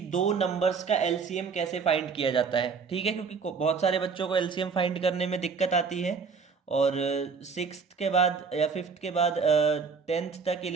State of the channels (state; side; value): quieter; left; 5.4 dB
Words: दो नंबर्स का एलसीएम कैसे फाइंड किया जाता है। ठीक है, क्योंकि बहुत सारे बच्चों को एलसीएम फाइंड करने में दिक्कत आती है और सिक्स्थ के बाद या फिफ्थ के बाद टेंथ तक,